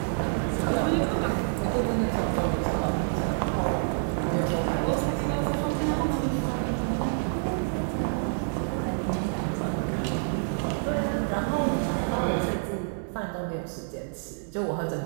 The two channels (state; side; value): silent; left; 60 dB below the other